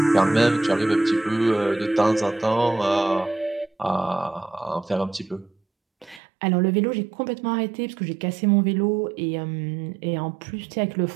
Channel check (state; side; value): drops out; left; at 6.2 s